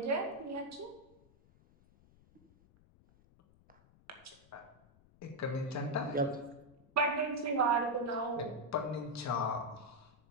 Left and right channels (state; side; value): noise; left; rumble, 28 dB below the sound